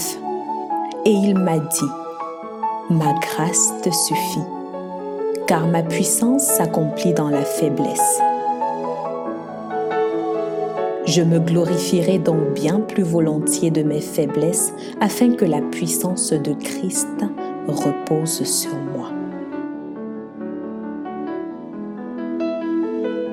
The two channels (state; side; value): identical; both; correlation 1.00